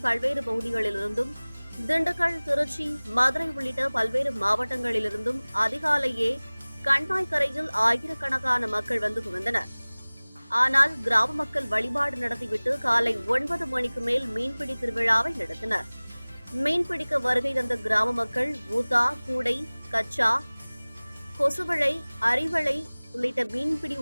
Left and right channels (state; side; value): inverted; both; correlation -1.00